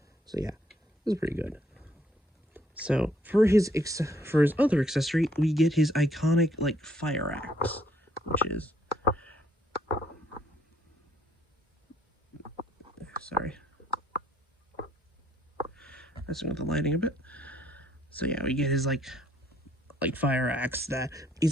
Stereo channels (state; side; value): normal; both; correlation 0.66